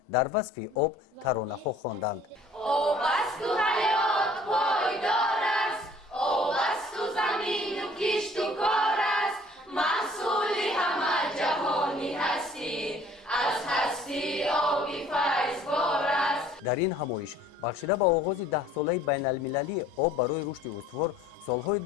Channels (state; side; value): normal; both; correlation 0.54